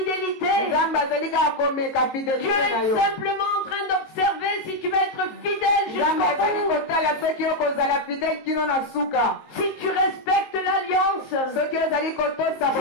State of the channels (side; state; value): right; late; 19 ms